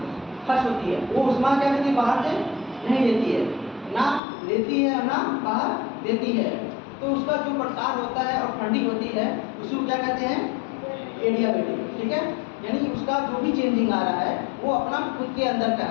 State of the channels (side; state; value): right; drops out; at 4.2 s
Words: खर्च होती है, वो ऊष्मा क्या करती है, बाहर से नहीं लेती है, ना लेती है ना बाहर देती है। तो उसका जो प्रसार होता है और ठंडी होती है उसको क्या कहते हैं, एडियाबिलिटी। ठीक है, यानी उसका जो भी चेंजिंग आ रहा है वो अपना खुद के अंदर का